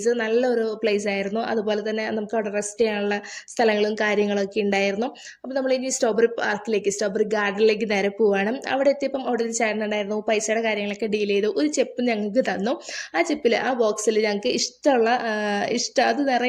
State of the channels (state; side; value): identical; both; correlation 1.00